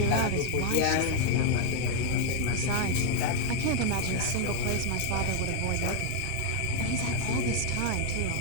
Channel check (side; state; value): both; different; correlation 0.00